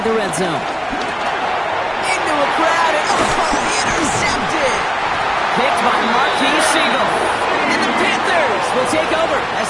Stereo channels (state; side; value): identical; both; correlation 1.00